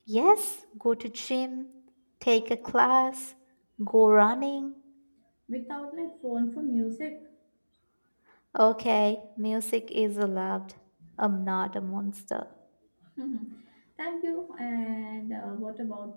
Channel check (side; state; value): both; inverted; correlation -1.00